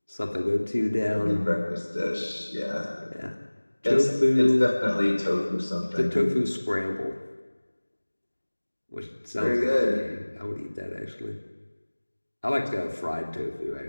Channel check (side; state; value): both; inverted; correlation -1.00